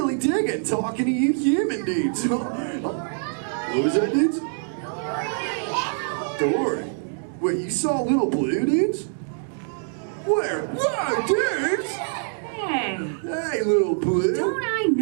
digging talking to you human dudes. What was that, dudes? Dory. Wait, you saw Little Blue, dudes? Where? Whoa, dudes! Hey. Hey, Little Blue. Don't I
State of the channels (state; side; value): silent; left; digital silence